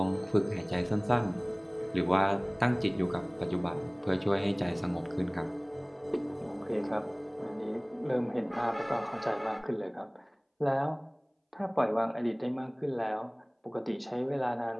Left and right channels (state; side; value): identical; both; correlation 1.00